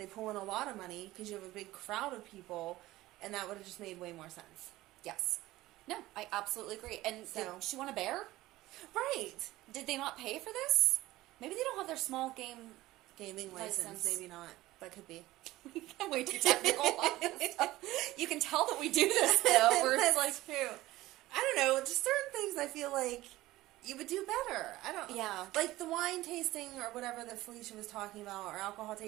pull in a lot of money because you have a big crowd of people, and that would have just made way more sense. Yes. No, I absolutely agree. And did she want a bear? Right. Did they not pay for this? Maybe they don't have their small gaming license. Maybe not. That could be. I'm way too technical on this stuff. You can tell that we do this, though. Where it's like, true. I don't know. Just certain things I feel like you would do better. I don't. Yeah. Like the wine tasting or whatever that Felicia was talking about, or alcohol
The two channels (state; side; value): quieter; left; 17.2 dB